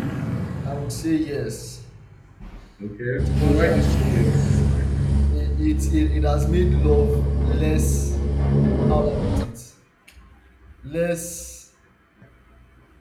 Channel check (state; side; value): identical; both; correlation 1.00